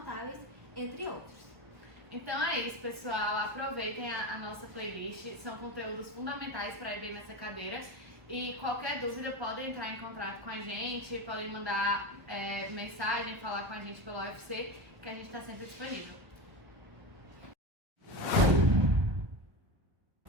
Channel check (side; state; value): left; late; 1.3 ms